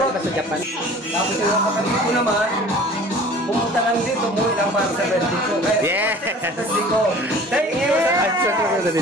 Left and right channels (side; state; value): both; normal; correlation 0.46